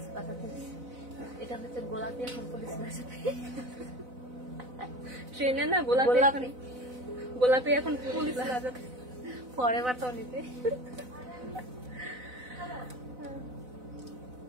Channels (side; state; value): left; late; 4.0 ms